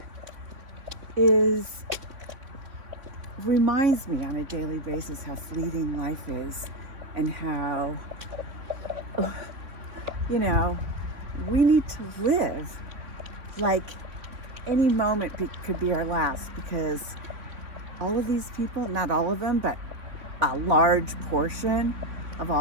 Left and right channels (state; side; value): late; left; 3.6 ms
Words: is reminds me on a daily basis how fleeting life is, and how, you know, we need to live like any moment could be our last, because all of these people, not all of them, but a large portion of